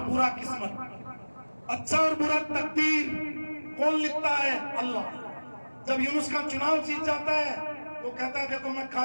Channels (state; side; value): inverted; both; correlation -1.00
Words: برا قسمت، اچھا اور برا تقدیر کون لکھتا ہے؟ اللہ۔ جب یونس کا چناؤ جیت جاتا ہے تو کہتا ہے دیکھو میں